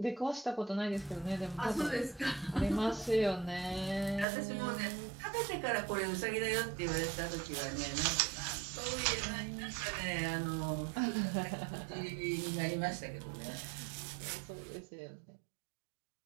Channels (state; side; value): drops out; left; at 4.2 s